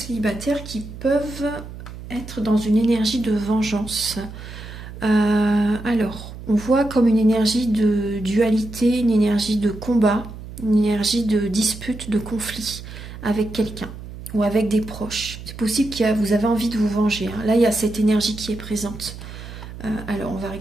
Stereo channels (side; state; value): right; noise; hum, 13 dB below the sound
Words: qui peuvent être dans une énergie de vengeance. Alors, on voit comme une énergie de dualité, une énergie de combat, une énergie de dispute, de conflit avec quelqu'un. Ou avec des proches. C'est possible que vous avez envie de vous venger. Hein. Là, il y a cette énergie qui est présente. Alors, on va